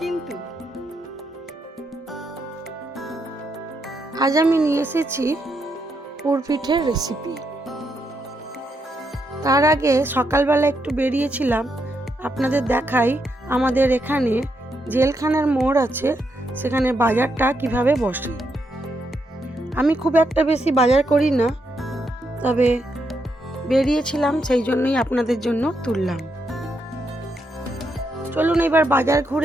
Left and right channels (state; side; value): normal; both; correlation 0.80